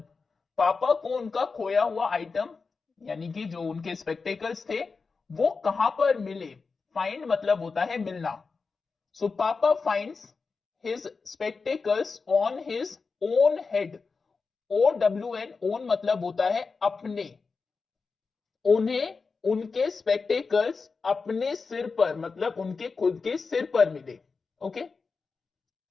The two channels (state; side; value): quieter; right; 4.6 dB